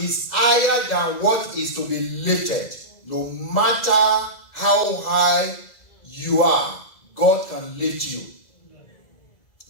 higher than what is to be lifted. No matter how high you are, God can lift you.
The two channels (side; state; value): right; late; 2.0 ms